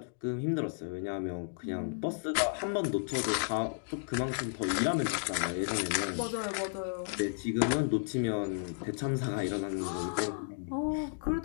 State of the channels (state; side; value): silent; right; digital silence